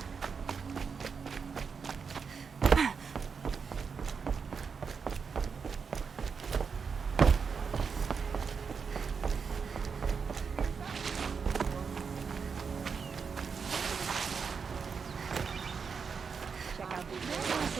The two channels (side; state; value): left; quieter; 5.8 dB